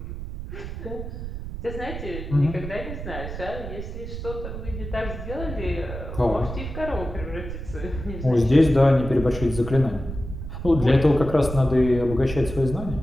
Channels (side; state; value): right; noise; rumble, 8 dB below the sound